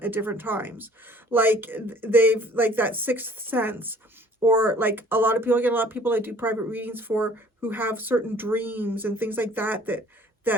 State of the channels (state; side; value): normal; both; correlation 0.54